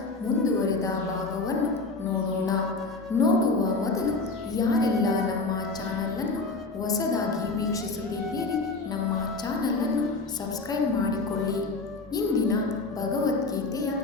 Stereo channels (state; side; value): quieter; right; 3.6 dB